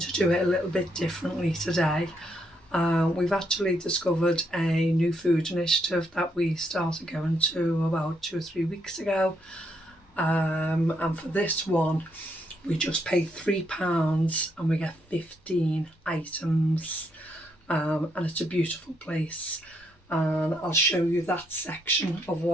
to do it a little bit differently today. We've actually discovered a new food initiative that we started going to about 2 or 3 weeks ago. And for this one, we just pay £3 and we get 15 items. And it's a beautiful place. And I'll show you that section of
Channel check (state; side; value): normal; both; correlation 0.76